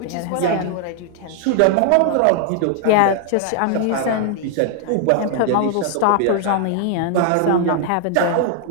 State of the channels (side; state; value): both; different; correlation 0.00